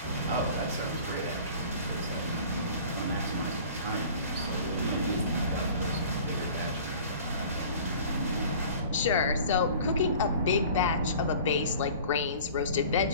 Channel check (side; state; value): both; inverted; correlation -0.45